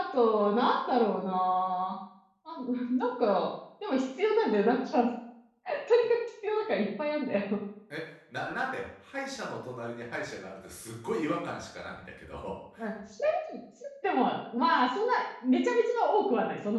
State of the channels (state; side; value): identical; both; correlation 1.00